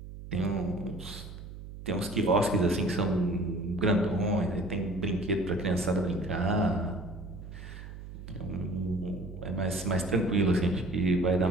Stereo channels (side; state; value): right; noise; hum, 12 dB below the sound